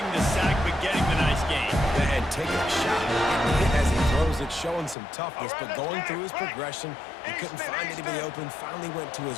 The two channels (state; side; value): drops out; right; at 5.0 s